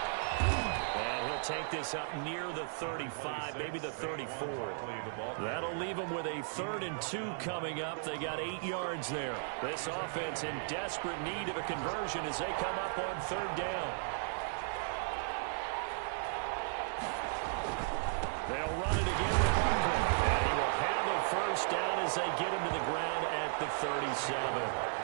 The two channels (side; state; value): left; silent; digital silence